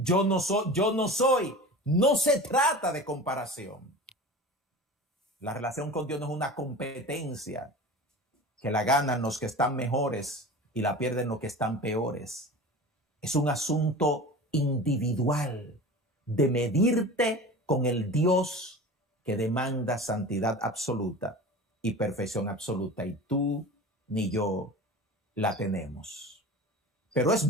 no soy. No se trata de comparación. La relación con Dios no es una competencia que la ganan los que están mejores y la pierden los que están peores. Es un asunto individual de medirte con el Dios que demanda santidad absoluta y perfección absoluta. Y tú ni yo la tenemos. Pero es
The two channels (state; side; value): normal; both; correlation 0.35